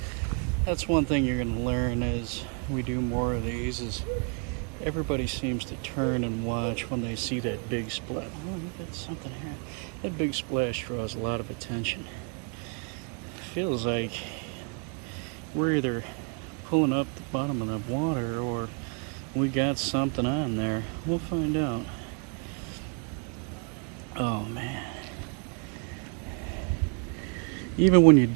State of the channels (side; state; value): left; quieter; 38.3 dB